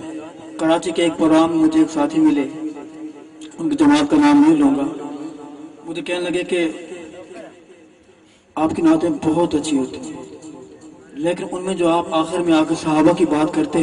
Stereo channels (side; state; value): both; identical; correlation 1.00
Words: کراچی کے ایک پروگرام مجھے ایک ساتھی ملے، ان کی جماعت کا نام نہیں لوں گا، مجھے کہنے لگے کہ آپ کی نعتیں بہت اچھی ہوتی ہیں، لیکن ان میں جو آپ آخر میں آ کے صحابہ کی بات کرتے